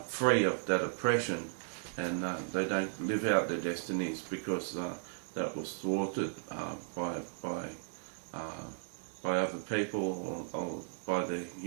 free of that oppression, and they don't live out their destinies because that was thwarted by other people or by the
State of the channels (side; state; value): left; silent; digital silence